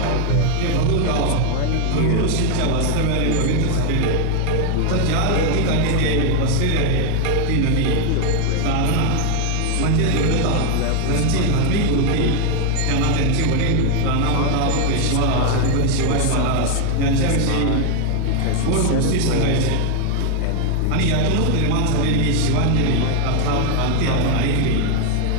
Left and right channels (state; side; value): different; both; correlation 0.00